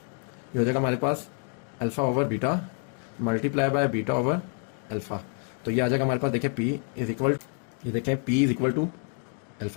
ये हो जाएगा हमारे पास alpha over beta multiply by beta over alpha. तो ये आ जाएगा हमारे पास देखिए p इज इक्वल, ये देखें p is equal to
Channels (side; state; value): right; quieter; 39.7 dB